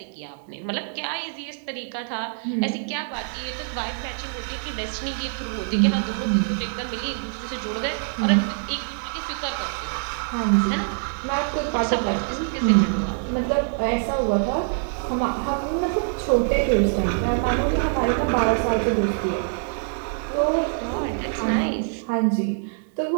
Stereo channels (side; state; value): left; silent; 62 dB below the other